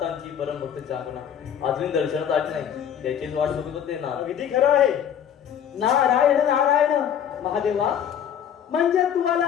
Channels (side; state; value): right; quieter; 9.1 dB